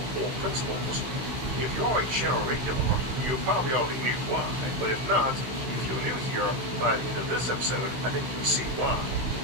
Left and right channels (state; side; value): late; left; 16 ms